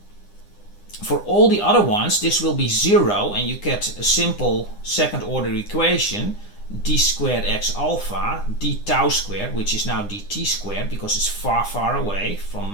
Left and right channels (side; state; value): right; late; 9.9 ms